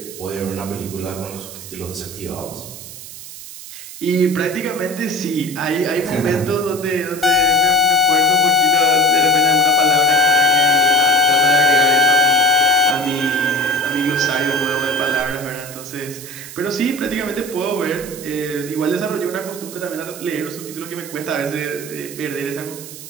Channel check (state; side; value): noise; right; hiss, 13 dB below the sound